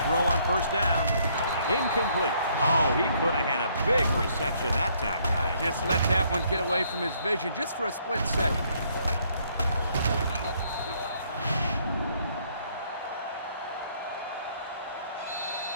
throw on 1st down. Incomplete. Oh, he could have had a big reception that time, guys. Just let that one get away from his vision just for a split second.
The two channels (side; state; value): both; inverted; correlation -0.67